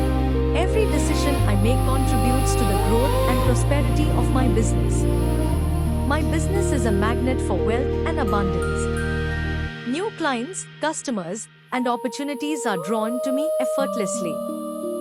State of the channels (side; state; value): both; identical; correlation 1.00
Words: Every decision I make contributes to the growth and prosperity of my business. My business is a magnet for wealth and abundance. New clients, customers, and opportunities are drawn to me effortlessly.